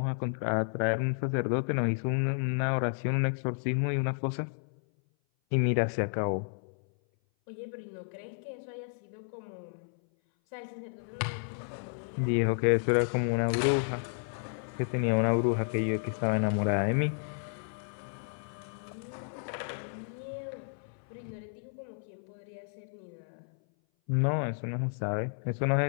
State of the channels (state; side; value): silent; right; 57 dB below the other